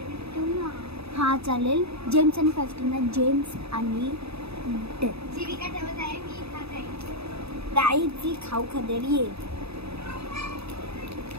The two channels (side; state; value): left; late; 0.79 ms